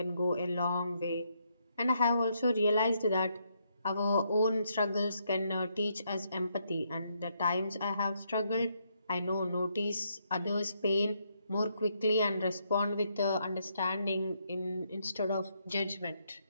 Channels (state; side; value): inverted; both; correlation -0.76